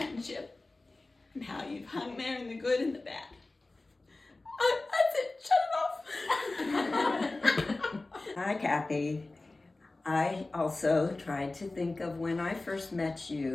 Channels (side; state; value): right; quieter; 3.1 dB